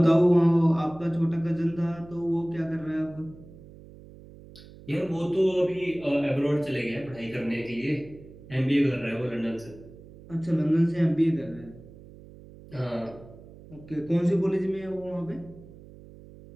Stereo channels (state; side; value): noise; right; hum, 19 dB below the sound